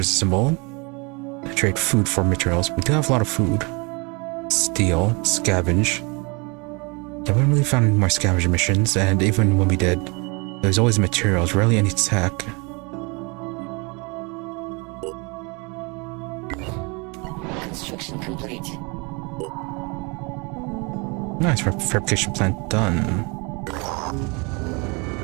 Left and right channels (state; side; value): quieter; left; 29.8 dB